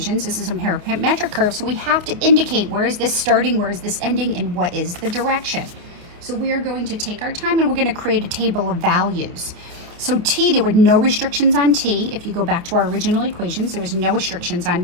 This is a parametric curve, so we have to indicate where is this starting, where is this ending, and what is the direction. So we are going to take our time and we're going to create a table of values. So t, there were no restrictions on t. If you go back to our original equations, there was no restrictions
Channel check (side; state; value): left; late; 28 ms